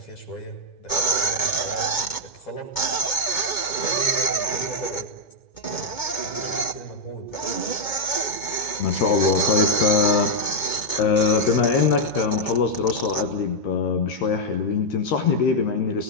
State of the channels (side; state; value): right; late; 2.2 ms